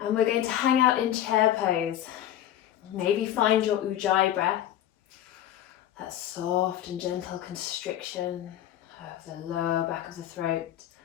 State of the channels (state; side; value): quieter; right; 11.8 dB